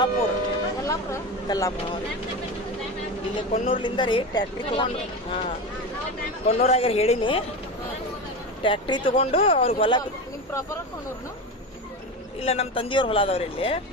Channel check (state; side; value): normal; both; correlation 0.23